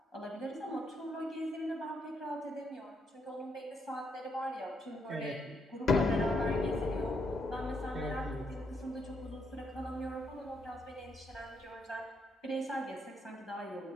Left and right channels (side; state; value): both; normal; correlation 0.76